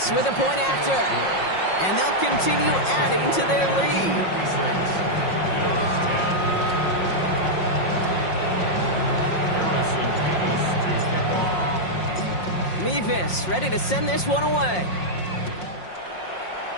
with a point after. And they'll continue adding to their lead. 56. Bills 10. Harrison Davis to kick off. Nevis ready to send this one away.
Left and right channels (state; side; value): late; right; 5.5 ms